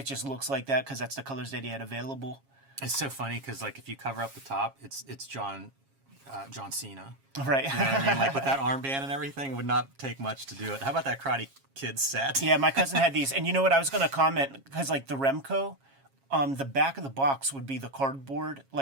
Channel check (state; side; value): late; left; 7.4 ms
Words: just looks like that because that's the colors that he had available. It's so funny because, like, if you cover up the top, it's John Cena. Right. You know what I mean? Like, with that armband and everything, would not take much to do it. How about that Karate Kid set? Yeah, my cousin had these. And you know what? I was going to comment because, like, the Remco, the back of the box would be the cardboard,